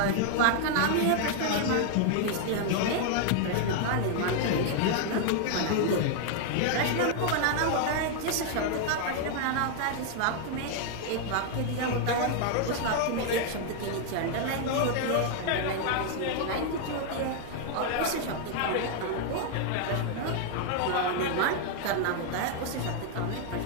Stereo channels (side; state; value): both; different; correlation 0.00